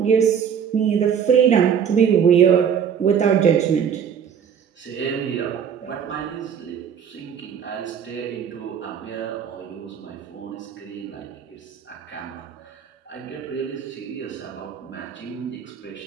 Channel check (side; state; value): left; quieter; 7.8 dB